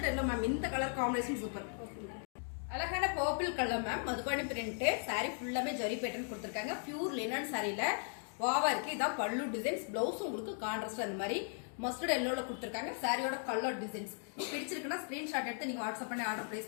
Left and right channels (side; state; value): right; silent; 53 dB below the other